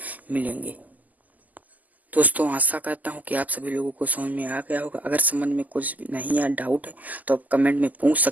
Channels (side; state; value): left; late; 0.080 ms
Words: मिलेंगे। दोस्तों आशा करता हूँ कि आप सभी लोगों को समझ में आ गया होगा। अगर समझ में कुछ नहीं या डाउट है तो आप कमेंट में पूछ